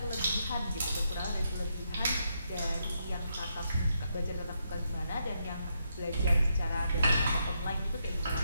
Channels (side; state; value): both; inverted; correlation -0.79